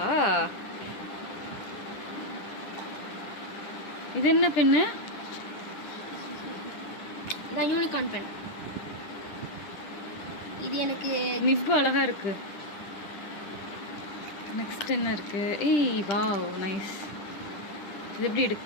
இது என்ன பென்னு? இதான் யூனிகார்ன் பென். இது எனக்கு நிப்பு அழகா இருக்கு. நெக்ஸ்ட் என்ன இருக்கு? ஏய் வாவ் நைஸ். இது எப்படி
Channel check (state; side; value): late; right; 10 ms